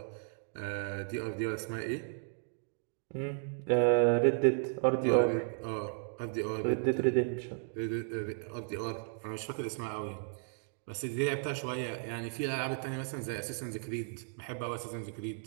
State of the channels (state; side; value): silent; left; digital silence